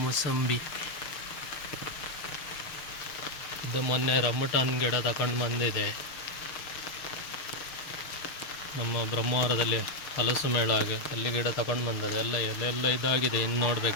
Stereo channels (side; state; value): right; late; 6.6 ms